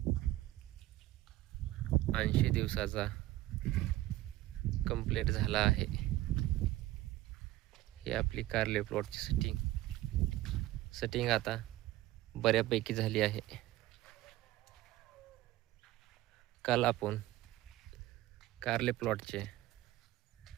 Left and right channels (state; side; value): quieter; left; 16.1 dB